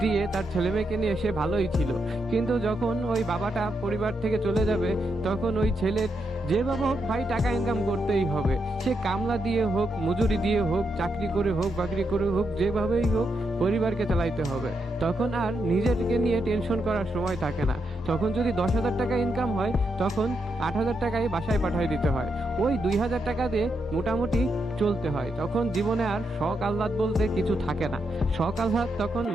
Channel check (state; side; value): normal; both; correlation 0.82